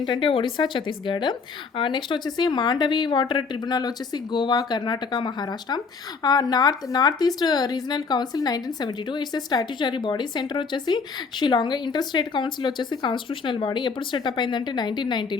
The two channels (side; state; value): right; quieter; 5.0 dB